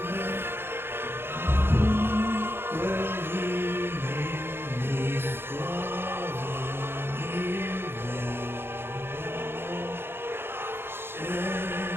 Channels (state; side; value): late; left; 0.11 ms